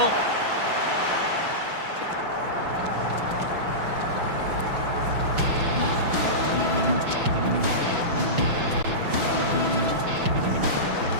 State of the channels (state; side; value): late; left; 5.9 ms